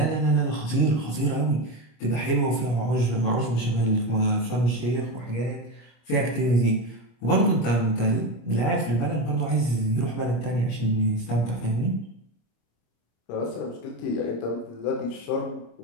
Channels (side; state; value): right; late; 26 ms